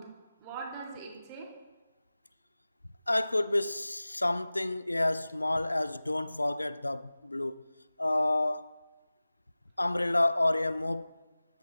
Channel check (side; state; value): both; inverted; correlation -0.98